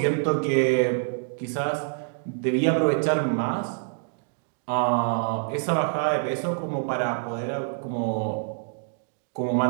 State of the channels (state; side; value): silent; left; digital silence